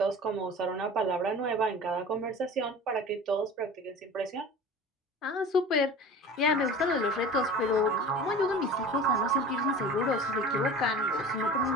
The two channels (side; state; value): both; normal; correlation 0.38